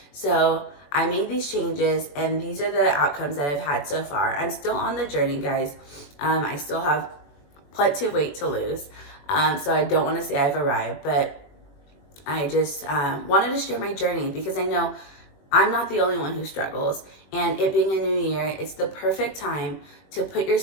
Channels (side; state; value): right; late; 21 ms